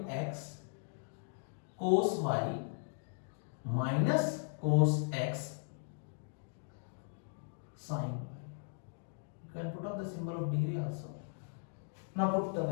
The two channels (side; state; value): right; silent; digital silence